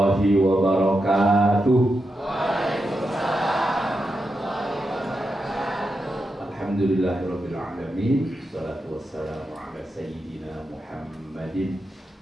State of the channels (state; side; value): normal; both; correlation 0.87